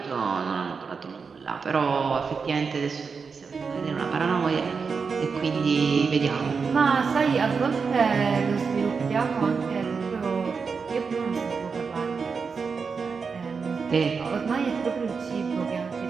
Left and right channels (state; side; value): quieter; left; 5.3 dB